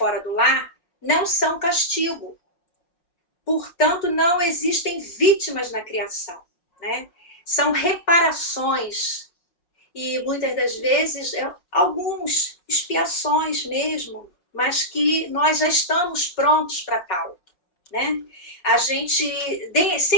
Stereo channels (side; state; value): right; late; 5.5 ms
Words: do lar não são castigo. Portanto, não existem vítimas na criação, né? São reparações e muitas das vezes algumas expiações mesmo, mas que nós já estamos prontos para tal, né? A gente